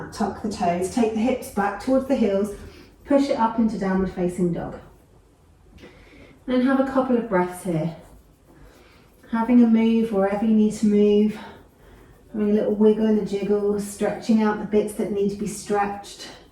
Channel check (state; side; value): identical; both; correlation 1.00